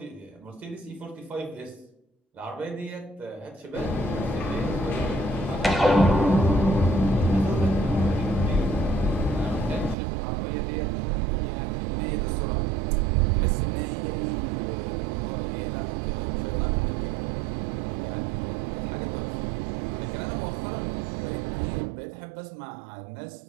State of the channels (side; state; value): left; drops out; at 10.0 s